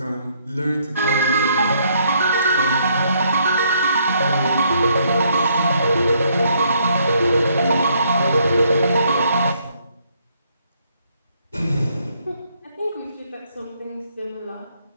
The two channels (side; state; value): both; inverted; correlation -0.70